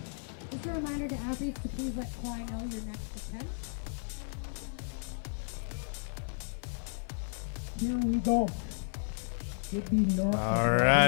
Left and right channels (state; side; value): silent; right; digital silence